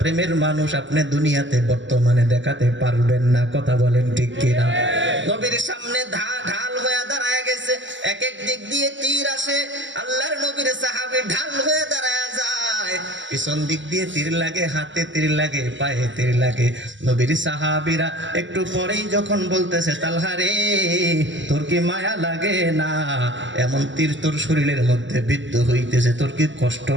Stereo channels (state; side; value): late; left; 0.54 ms